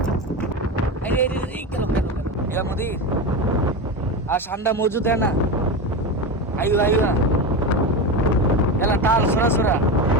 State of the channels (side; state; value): both; normal; correlation 0.20